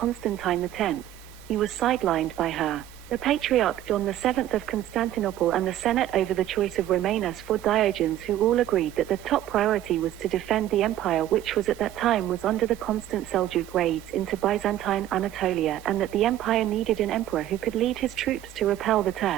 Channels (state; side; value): quieter; left; 12.5 dB